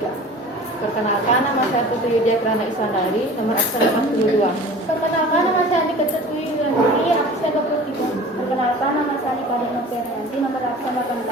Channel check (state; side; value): normal; both; correlation 0.41